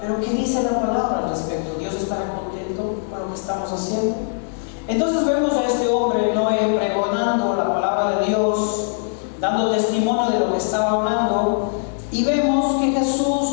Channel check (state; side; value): silent; right; 65 dB below the other